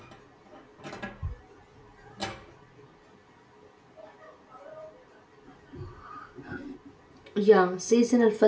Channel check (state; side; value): identical; both; correlation 1.00